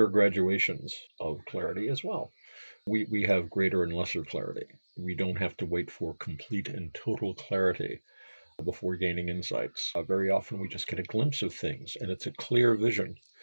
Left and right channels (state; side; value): inverted; both; correlation -1.00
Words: are graduations of clarity as well. We have greater and lesser clarity. We don't have to wait for complete and total clarity before gaining insights. Very often we just get a glimpse of things and it's a clear vision.